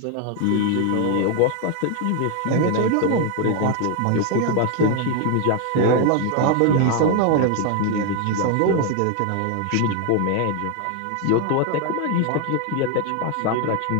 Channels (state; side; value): different; both; correlation 0.01